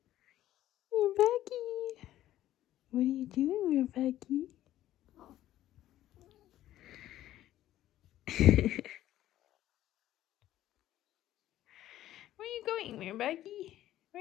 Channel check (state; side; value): quieter; right; 13.4 dB